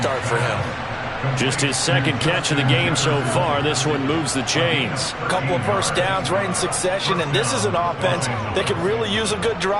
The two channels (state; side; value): identical; both; correlation 1.00